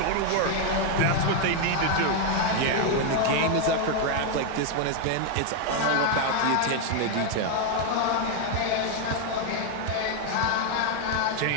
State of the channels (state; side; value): different; both; correlation 0.01